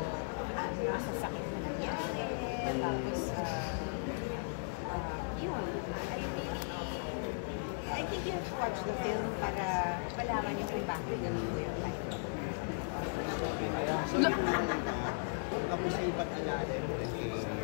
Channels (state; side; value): silent; right; digital silence